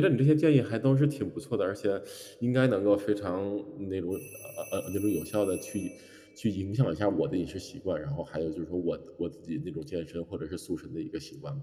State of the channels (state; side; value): identical; both; correlation 1.00